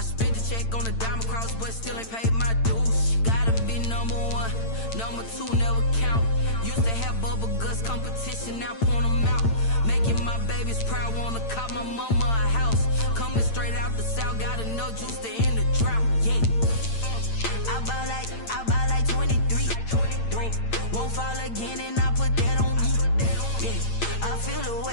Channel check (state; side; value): late; right; 8.9 ms